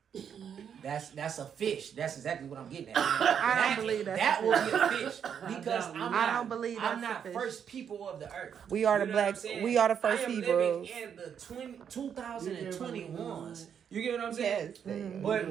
That's a fish. That's exactly what I'm getting at. I don't believe that will be a fish because I don't believe I'm not first people of the earth. We are the black. We are the first Hebrews. I am living in the 2021s. You get what I'm saying?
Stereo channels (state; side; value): quieter; left; 8.0 dB